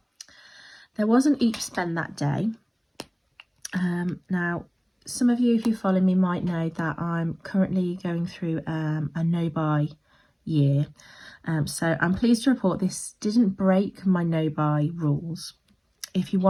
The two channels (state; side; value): identical; both; correlation 1.00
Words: There wasn't each spend that day. Now, some of you, if you follow me, might know that I'm currently going through a no-buy year. So I'm pleased to report this didn't break my no-buy rules. If you